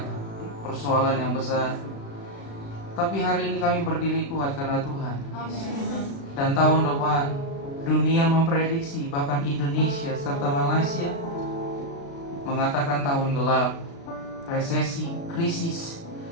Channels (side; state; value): right; late; 36 ms